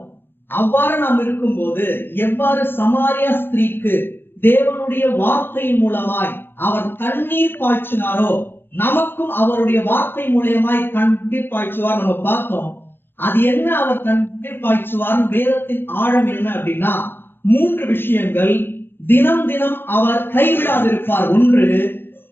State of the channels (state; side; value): late; right; 0.10 ms